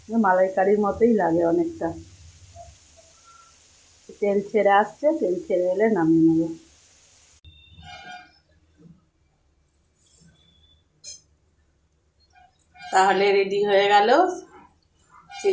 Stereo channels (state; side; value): identical; both; correlation 1.00